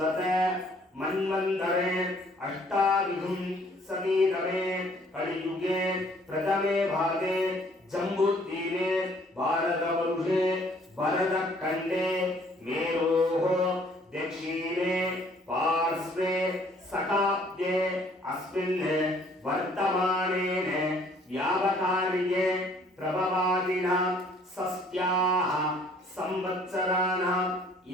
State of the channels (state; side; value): normal; both; correlation 0.60